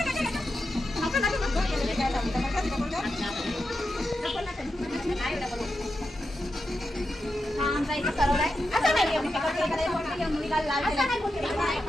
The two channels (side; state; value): both; normal; correlation 0.88